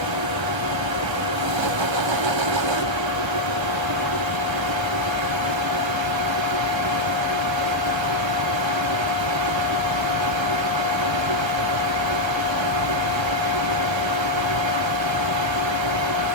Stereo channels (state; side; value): late; left; 1.3 ms